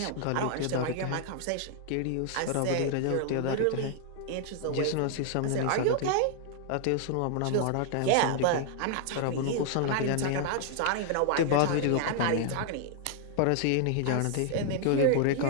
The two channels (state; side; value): different; both; correlation 0.00